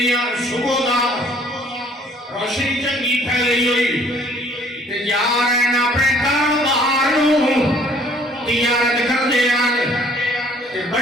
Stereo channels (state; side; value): normal; both; correlation 0.58